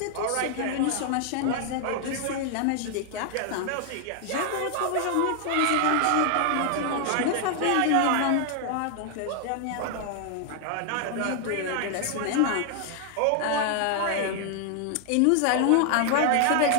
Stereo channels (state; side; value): different; both; correlation 0.00